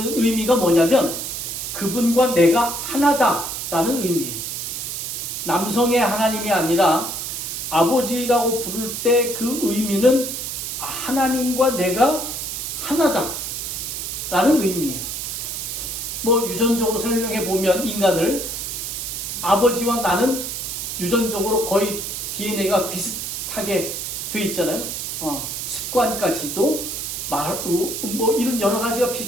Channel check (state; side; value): noise; right; hiss, 5 dB below the sound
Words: 의미가 뭐냐면 그분과 내가 하나다라는 의미예요. 남성의 하나님이 아니라 아버지라고 부를 때 그 의미는 하나님과 내가 하나다라는 의미예요. 뭐 유전적으로 설명해 보면 인간을 아버지와 나는 유전적으로 거의 DNA가 비슷하게 돼 있잖아요. 습관까지도 뭐 이런 여러 가지가